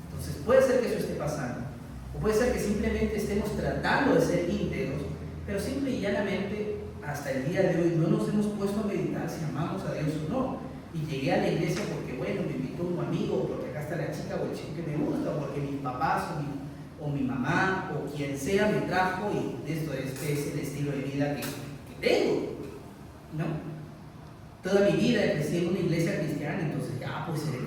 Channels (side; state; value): both; identical; correlation 1.00